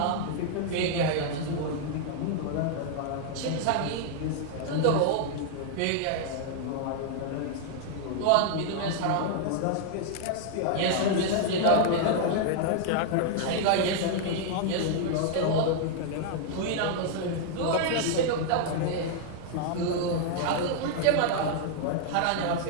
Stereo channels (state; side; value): different; both; correlation -0.01